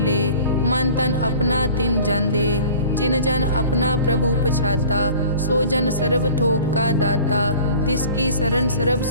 मन तन अपना तिन जन दे। जिन जन अपना प्रभु पछाता, सो जन सर्व थोक का दाता। तिसकी शरण सर्व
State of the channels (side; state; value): both; inverted; correlation -0.44